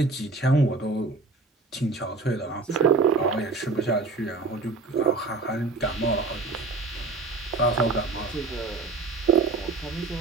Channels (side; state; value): left; quieter; 3.7 dB